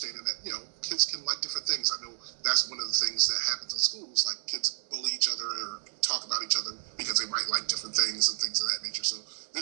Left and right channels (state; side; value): silent; left; digital silence